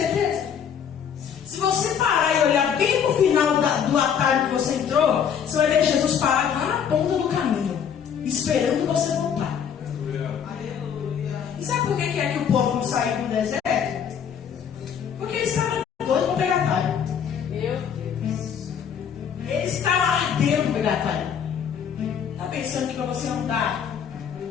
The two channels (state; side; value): quieter; right; 7.9 dB